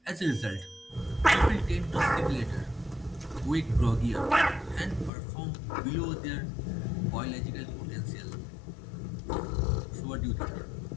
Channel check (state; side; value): drops out; right; at 5.1 s